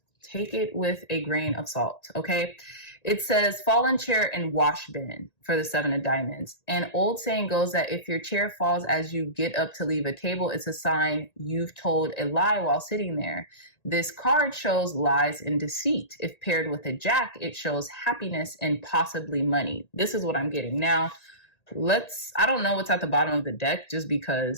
take it with a grain of salt, okay? It says, fallen chair and wash bin for the 7 of diamonds. An old saying goes that if your chair falls as you get up to leave a table, it's a sign you've told a lie while sitting there. This card shows lies and deceit. If paired with a jack, it shows happiness and possibly money. This is what I'm getting. Now, I don't know what's at the bottom of the deck, just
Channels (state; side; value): late; right; 1.9 ms